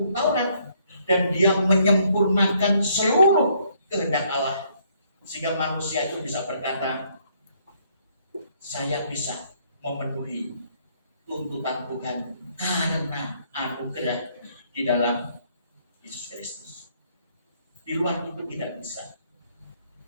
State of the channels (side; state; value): both; inverted; correlation -0.68